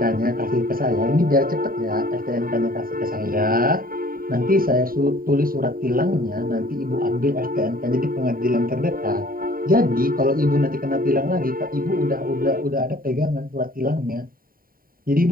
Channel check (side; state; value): left; late; 0.42 ms